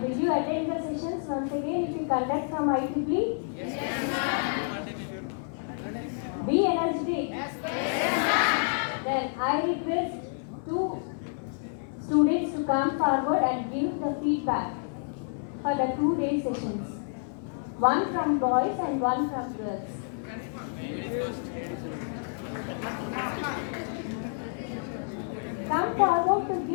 will you attend the sessions once again if you conduct from IEEE? Be energetic. Then I request two students to come forward and give the feedback for the 2-day sessions. One from boys and one from girls. Come forward to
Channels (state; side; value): silent; right; 59 dB below the other